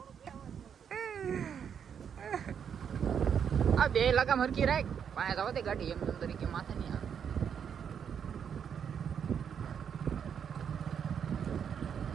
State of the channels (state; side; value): quieter; left; 7.8 dB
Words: આ બે લગામ હરકી રાખ, પાસે જવા દે ગાડી. એમ તરીકે માથે નહીં આવે.